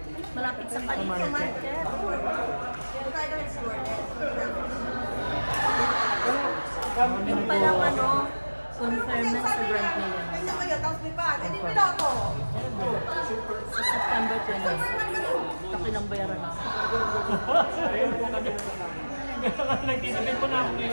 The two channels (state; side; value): inverted; both; correlation -1.00